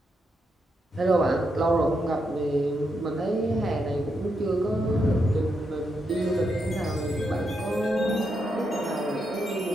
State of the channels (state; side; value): normal; both; correlation 0.82